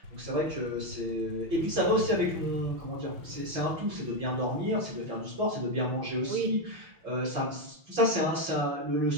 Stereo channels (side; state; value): left; late; 5.8 ms